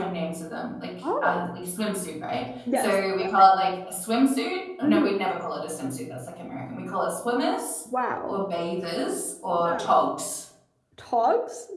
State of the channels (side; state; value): both; identical; correlation 1.00